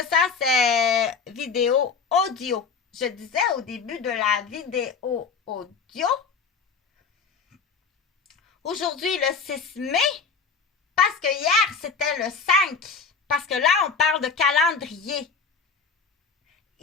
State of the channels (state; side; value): quieter; right; 5.3 dB